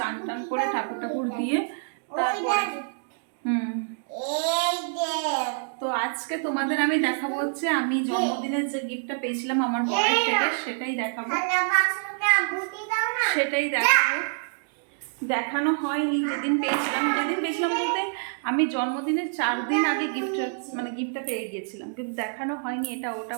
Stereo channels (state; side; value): silent; left; digital silence